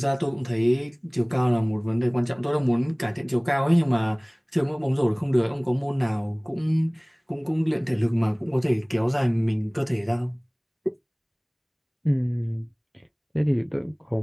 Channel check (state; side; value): identical; both; correlation 1.00